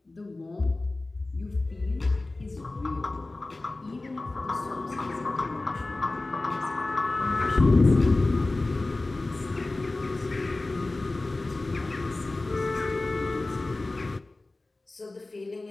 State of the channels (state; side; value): quieter; right; 3.1 dB